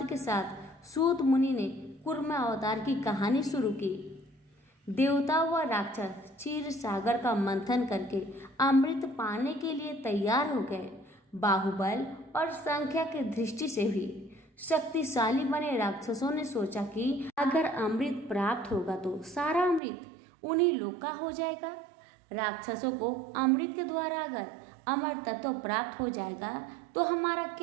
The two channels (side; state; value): left; drops out; at 19.8 s